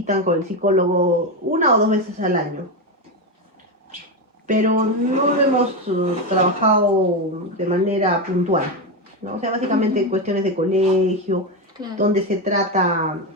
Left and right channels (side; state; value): both; normal; correlation 0.12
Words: con el psicólogo 1 o 2 veces al año. Pero no lo hemos trabajado de manera puntual, ¿no? O sea, básicamente cuestiones de colegio, Claro. donde se trata